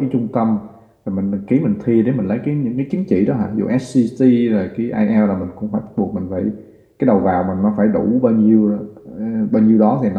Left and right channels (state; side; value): identical; both; correlation 1.00